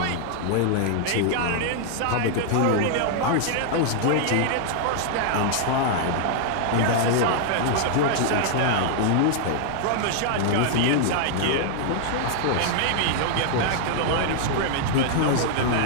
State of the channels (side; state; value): both; different; correlation -0.01